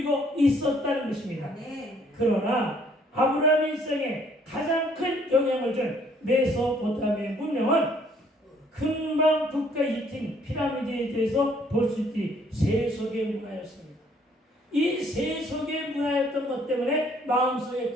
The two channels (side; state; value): both; normal; correlation 0.63